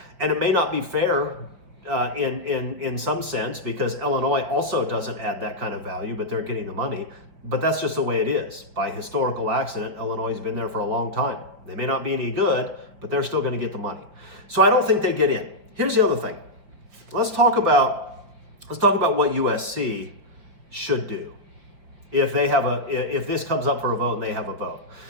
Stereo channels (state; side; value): late; left; 5.1 ms